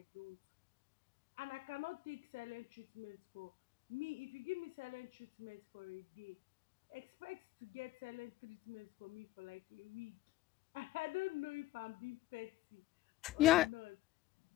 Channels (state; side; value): quieter; right; 16.3 dB